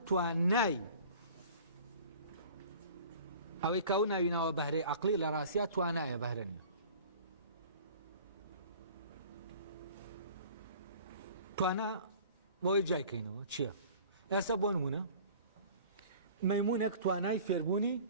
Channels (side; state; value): both; inverted; correlation -0.45